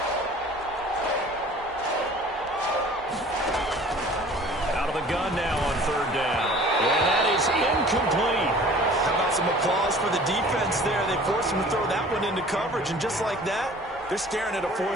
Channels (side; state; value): both; normal; correlation 0.48